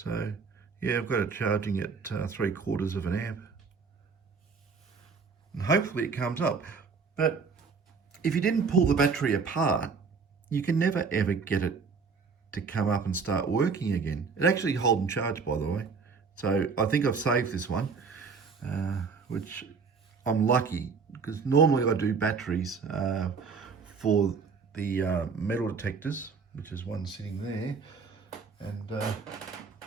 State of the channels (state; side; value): quieter; left; 5.2 dB